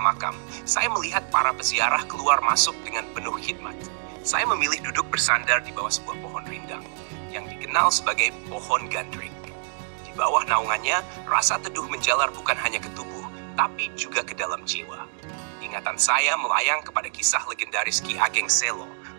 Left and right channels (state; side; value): silent; left; digital silence